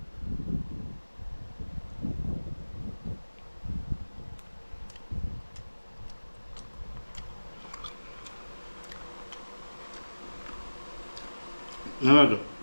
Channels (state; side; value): inverted; both; correlation -1.00